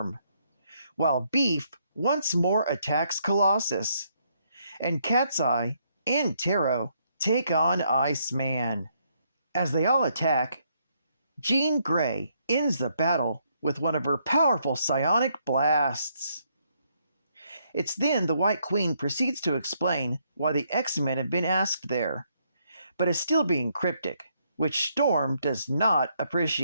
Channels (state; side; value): inverted; both; correlation -0.73